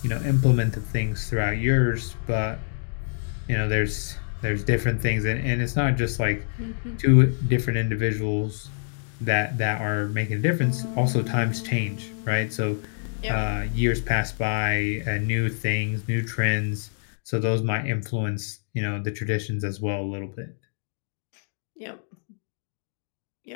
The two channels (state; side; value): silent; right; digital silence